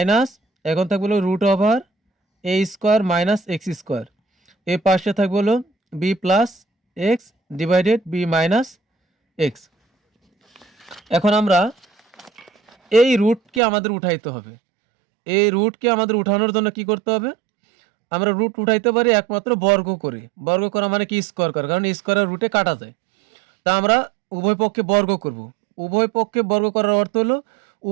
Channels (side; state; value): left; drops out; at 13.6 s